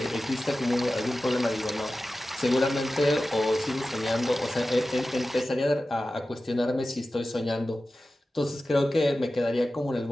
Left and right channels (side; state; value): both; normal; correlation 0.95